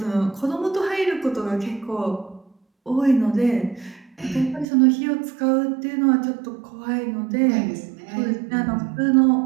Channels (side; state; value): left; drops out; at 4.7 s